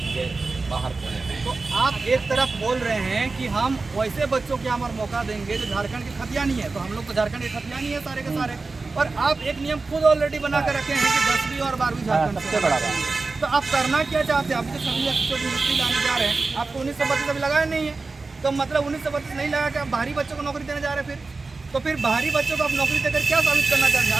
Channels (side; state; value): left; quieter; 3.8 dB